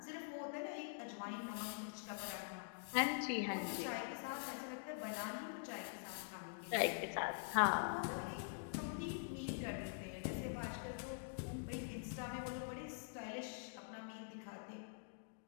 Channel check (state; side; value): silent; right; digital silence